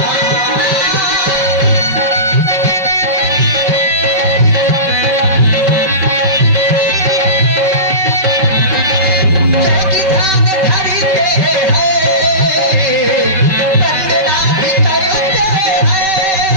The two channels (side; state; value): left; late; 5.3 ms